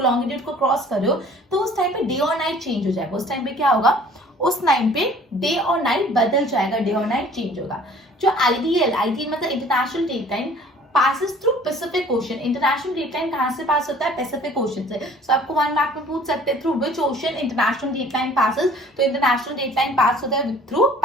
को क्रॉस कर रहे हो, तो उस टाइम पे डे और नाइट चेंज हो जाएगा. उस टाइम पे क्या होगा? उस टाइम पे डे और नाइट बदल जाएगा, डे और नाइट चेंज होगा. जो आईडीएल मतलब international date line passes through Pacific Ocean. International date line कहाँ से पास होता है? पैसिफिक ओशन से. सो आपको 1 मार्क में पूछ सकते हैं through which ocean international date line passes. तो इंटरनेशनल डेट लाइन पास होता है थ्रू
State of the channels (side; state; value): both; normal; correlation 0.51